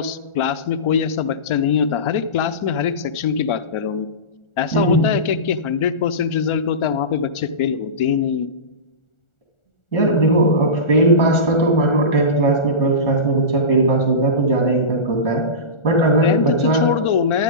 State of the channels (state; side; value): late; right; 1.4 ms